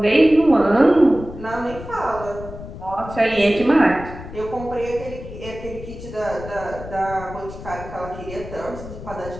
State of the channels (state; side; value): noise; left; rumble, 12 dB below the sound